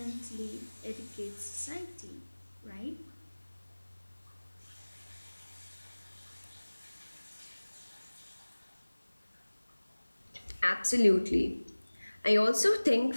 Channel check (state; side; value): inverted; both; correlation -1.00